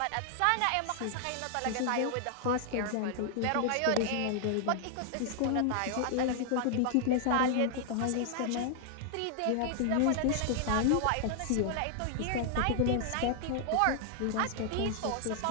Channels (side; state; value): both; different; correlation 0.00